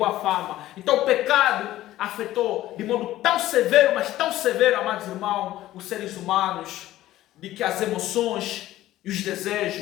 fama. Então o pecado afetou de modo tão severo, mas tão severo, amados irmãos, os seres humanos, de que as emoções e os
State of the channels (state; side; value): quieter; right; 14.8 dB